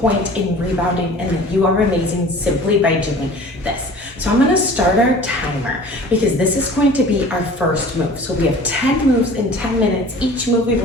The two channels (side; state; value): both; normal; correlation 0.44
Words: point in rebounding, and that you are amazing simply by doing this. So I'm gonna start our timer because this is going to be our first move. So we have 10 moves in 10 minutes. Each move we